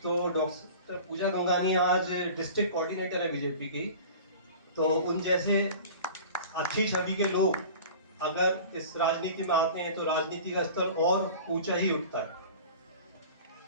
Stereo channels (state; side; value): inverted; both; correlation -0.40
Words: तो डॉक्टर पूजा गंगानिया आज डिस्ट्रिक्ट कोऑर्डिनेटर है बीजेपी की, तो उन जैसे अच्छी छवि के लोग अगर इस राजनीति में आते हैं तो राजनीति का स्तर और ऊंचा ही उठता है।